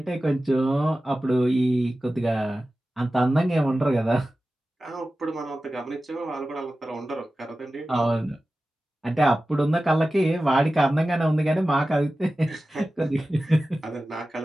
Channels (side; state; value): both; normal; correlation 0.95